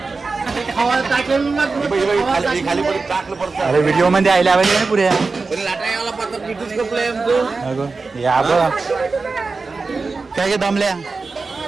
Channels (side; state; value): left; quieter; 4.1 dB